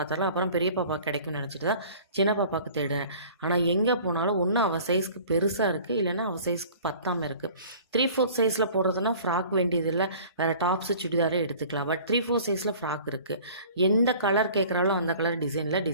அப்புறம் பெரிய பாப்பாவுக்கு கிடைக்கும்னு நினச்சிட்டு தான் சின்ன பாப்பாவுக்கு தேடுறேன். ஆனால் எங்கே போனாலும் ஒன்று அவள் சைஸ்க்கு பெருசாக இருக்குது, இல்லைன்னா அவள் சைஸ்க்கு பத்தாமல் இருக்குது. 3/4 சைஸில் போடுறதுனா ஃப்ராக் வேண்டியதில்லை, வேறு டாப்ஸு சுடிதாரே எடுத்துக்கலாம். பட் 3/4 சைஸில் ஃப்ராக் இருக்குது. எந்த கலர் கேட்குறாலும் அந்த கலர் டிசைனில்,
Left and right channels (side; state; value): both; inverted; correlation -0.47